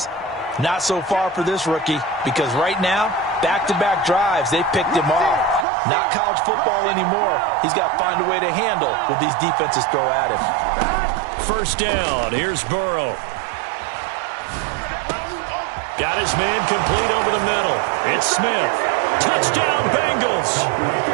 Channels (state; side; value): drops out; left; at 5.7 s